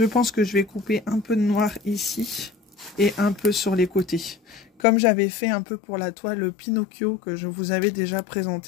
pense que je vais couper un peu de noir ici et un peu sur les côtés. Comme j'avais fait un peu pour la toile Pinocchio que je vous avais déjà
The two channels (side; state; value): right; drops out; at 4.9 s